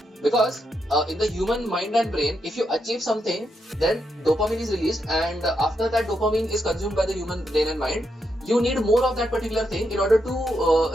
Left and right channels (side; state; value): both; normal; correlation 0.82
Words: Because in the human mind and brain, if you achieve something, then dopamine is released, and after that dopamine is consumed by the human brain and mind, you need more of that particular thing in order to